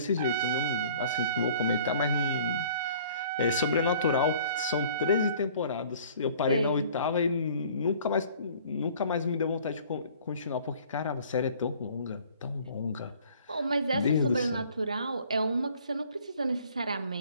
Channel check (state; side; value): inverted; both; correlation -0.52